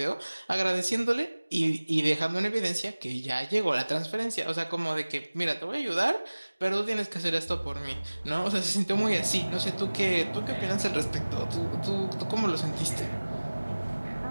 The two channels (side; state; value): both; inverted; correlation -1.00